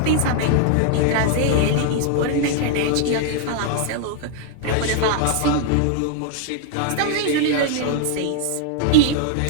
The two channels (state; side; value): different; both; correlation 0.00